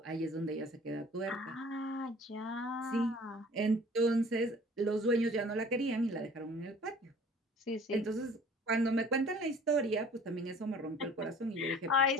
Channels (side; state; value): both; normal; correlation 0.49